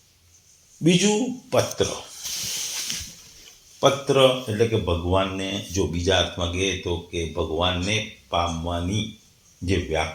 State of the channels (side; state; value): both; identical; correlation 1.00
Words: બીજું પત્ર. પત્ર એટલે કે ભગવાનને, જો બીજા અર્થમાં કહીએ તો કે ભગવાનને પામવાની જે